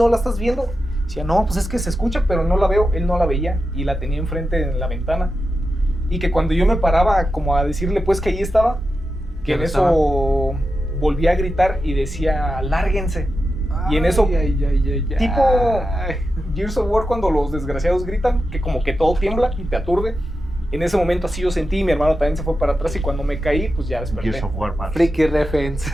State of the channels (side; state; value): both; normal; correlation 0.90